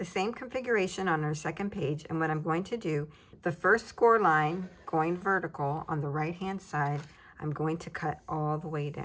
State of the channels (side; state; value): both; identical; correlation 1.00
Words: same configuration on our second page, and what I'm going to do, the first score line going vertical on the right-hand side, I'm going to cut all the way